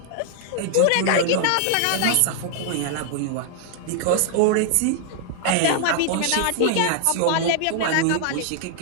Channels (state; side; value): different; both; correlation 0.00